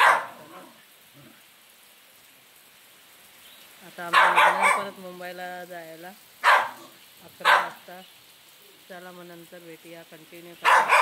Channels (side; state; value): both; identical; correlation 1.00